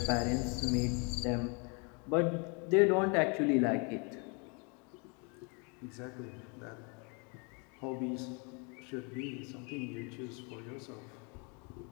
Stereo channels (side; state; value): right; quieter; 33.9 dB